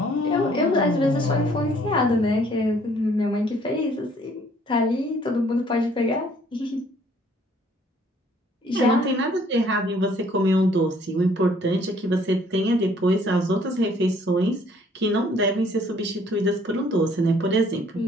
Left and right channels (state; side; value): normal; both; correlation 0.60